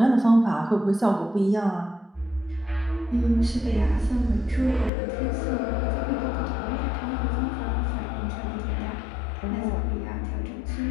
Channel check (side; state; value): right; drops out; at 4.9 s